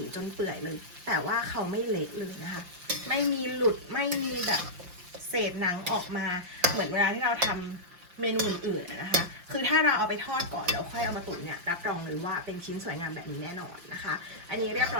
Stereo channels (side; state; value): left; late; 5.6 ms